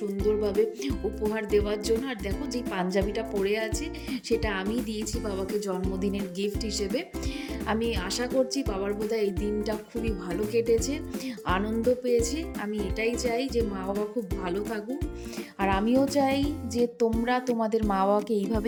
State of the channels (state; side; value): identical; both; correlation 1.00